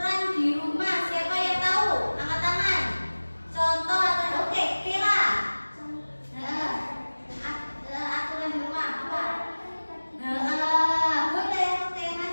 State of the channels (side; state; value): both; inverted; correlation -1.00